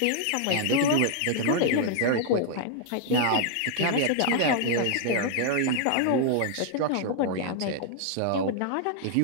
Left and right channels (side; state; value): both; different; correlation 0.00